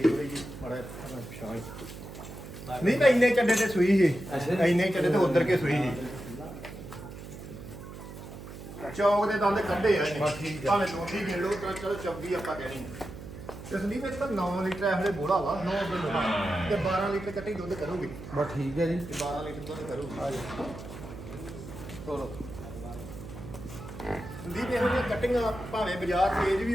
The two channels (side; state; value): right; noise; hum, 12 dB below the sound